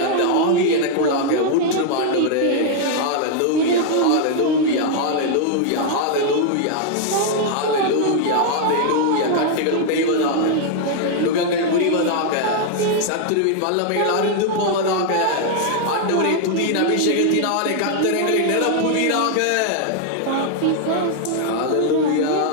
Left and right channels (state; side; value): different; both; correlation 0.00